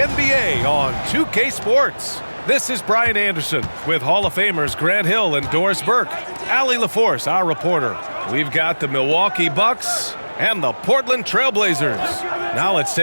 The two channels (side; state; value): both; inverted; correlation -1.00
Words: on 2K Sports. This is Brian Anderson with Hall of Famers Grant Hill and Doris Burke. Allie LaForce, our reporter. We've got the Milwaukee Bucks and the Portland Trailblazers. Now let's